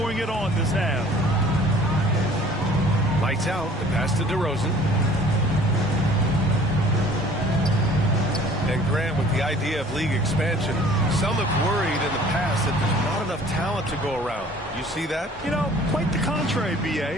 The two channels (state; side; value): normal; both; correlation 0.51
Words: it on this half. Lights out. The pass to DeRozan. And Grant, with the idea of league expansion, some have worried in the past that there's not enough talent to go around. You see that? You know, quite the contrary,